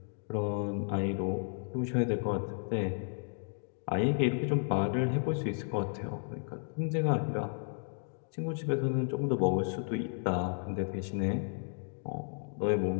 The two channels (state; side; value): silent; right; digital silence